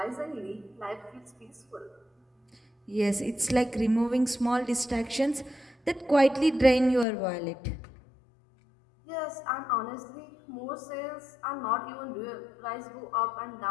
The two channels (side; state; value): right; drops out; at 7.1 s